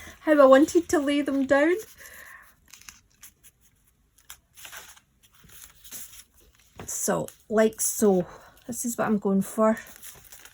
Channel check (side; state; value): both; identical; correlation 1.00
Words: how I wanted to lay them down. So, like so. This is what I'm going for.